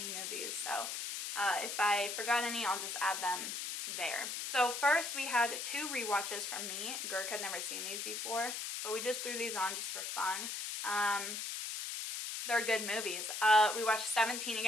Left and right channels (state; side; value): noise; left; hiss, 4 dB below the sound